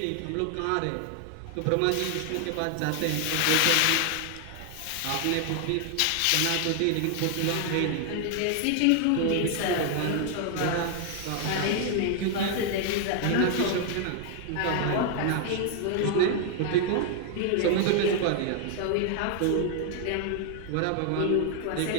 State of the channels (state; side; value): different; both; correlation 0.00